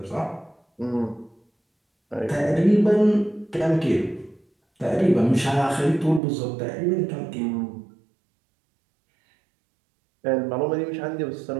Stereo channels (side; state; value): left; drops out; at 6.2 s